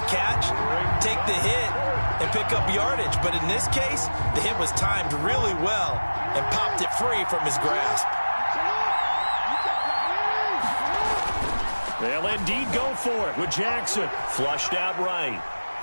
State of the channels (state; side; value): inverted; both; correlation -1.00